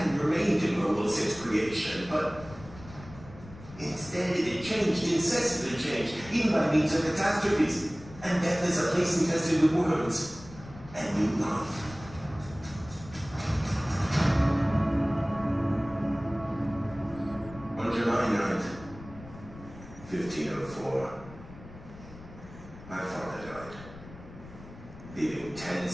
remained in World since creation, but instead it had changed, incessantly changed, even by means of catastrophes, and death is a place infested with worms, and new life. On July 9th, 1504, my father died, leaving 10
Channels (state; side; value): noise; left; rumble, 17 dB below the sound